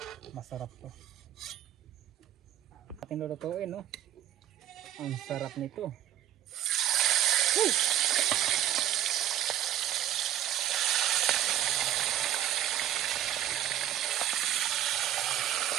Masarap to. Ating lulutuin, no? Ang sarap nito. Hey!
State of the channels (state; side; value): quieter; left; 12.1 dB